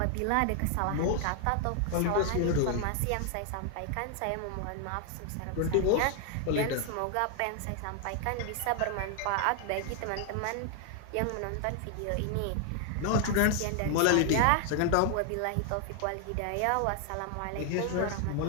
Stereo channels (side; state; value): both; different; correlation 0.00